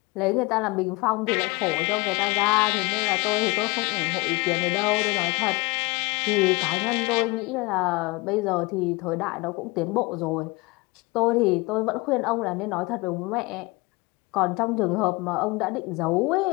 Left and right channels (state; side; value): quieter; right; 24.8 dB